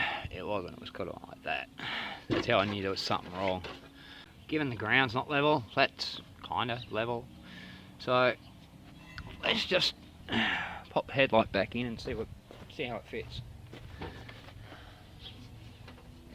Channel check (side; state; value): both; identical; correlation 1.00